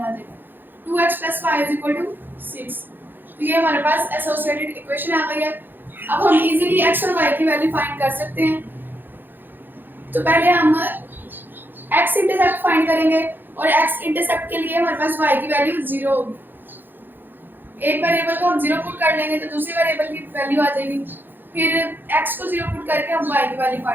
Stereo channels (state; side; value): late; left; 0.094 ms